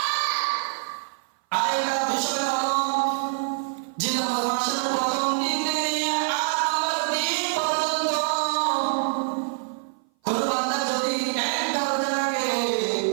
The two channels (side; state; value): left; silent; 58 dB below the other